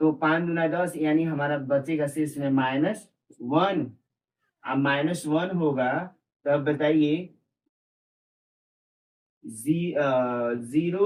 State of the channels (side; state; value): both; identical; correlation 1.00